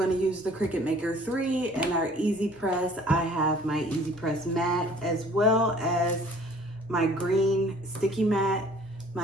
to use the Cricut Maker 3 and our EasyPress. I have my EasyPress mat as well as my green sticky mat,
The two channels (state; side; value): normal; both; correlation 0.53